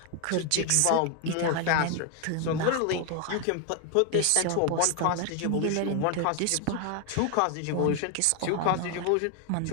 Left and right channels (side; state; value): both; different; correlation 0.01